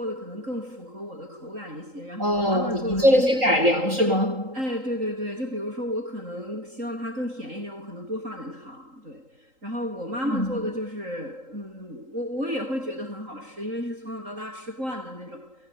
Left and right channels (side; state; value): left; late; 3.8 ms